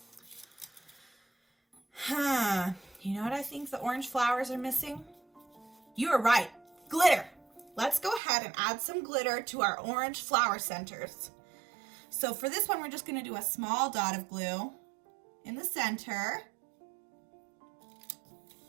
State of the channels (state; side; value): drops out; left; at 8.2 s